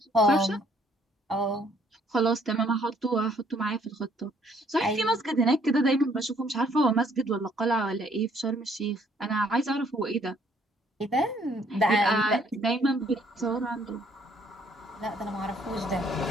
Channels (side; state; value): both; normal; correlation 0.64